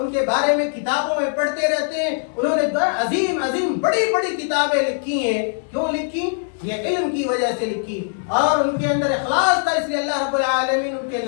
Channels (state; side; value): silent; right; 62 dB below the other